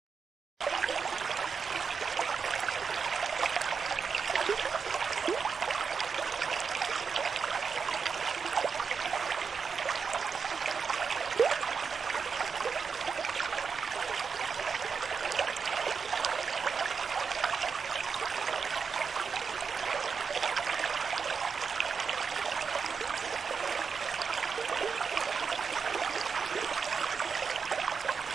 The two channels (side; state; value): left; quieter; 5.8 dB